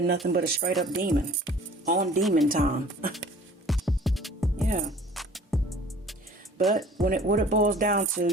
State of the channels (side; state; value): both; normal; correlation 0.48